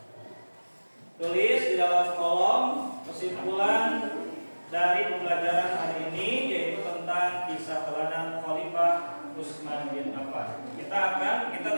Tulis di dalam kolom kesimpulan dari pembelajaran hari ini, yaitu tentang kisah teladan Khalifah Utsman bin Affan. Kita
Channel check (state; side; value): inverted; both; correlation -1.00